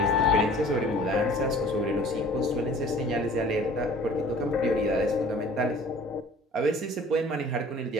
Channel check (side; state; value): both; normal; correlation 0.48